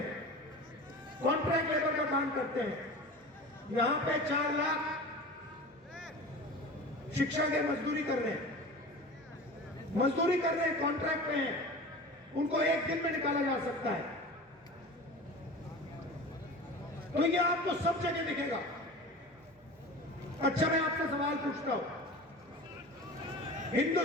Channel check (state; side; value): normal; both; correlation 0.35